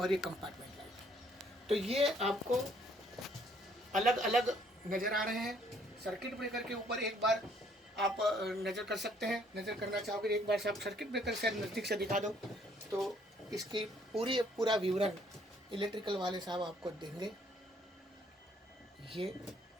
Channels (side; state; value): both; normal; correlation 0.64